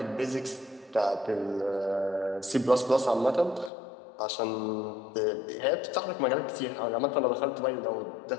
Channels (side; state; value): right; drops out; at 3.7 s